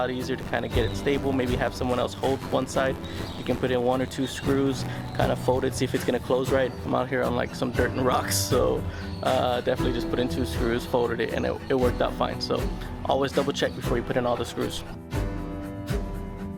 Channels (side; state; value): both; identical; correlation 1.00